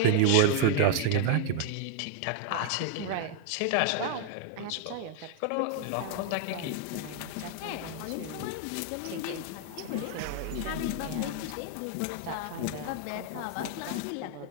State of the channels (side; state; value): both; different; correlation 0.00